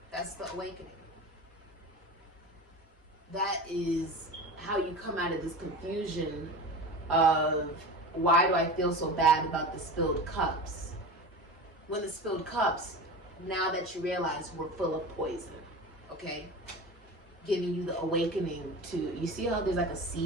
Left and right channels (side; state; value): both; normal; correlation 0.31